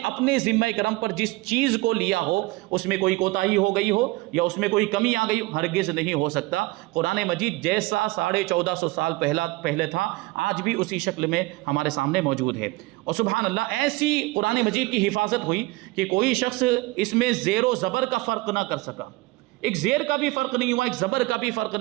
اپنے ذمہ کرم پر جس چیز کو لیا ہو اس میں کوئی کوتاہی ہو گئی ہو یا اس میں کوئی کمی آ گئی ہو. ہرگز نہیں ہو سکتا. قرآن مجید جیسا 1450 سال پہلے تھا آج بھی اسی شکل میں ہمارے سامنے موجود ہے. اور سبحان اللہ، ایسی قرآن مجید کی حفاظت ہوئی کہ کوئی شخص اس میں زیر و زبر کا فرق نہ کر سکا. ایک زیر کا بھی فرق نہیں ہوا، ایک زبر کا بھی فرق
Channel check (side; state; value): left; quieter; 21.3 dB